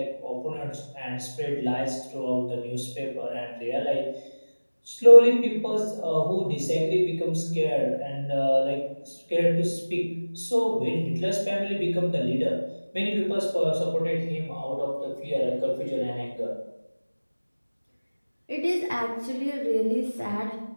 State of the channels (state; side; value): inverted; both; correlation -1.00